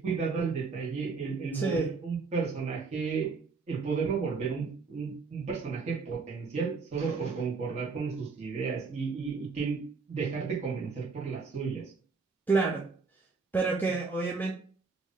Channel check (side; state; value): left; quieter; 4.6 dB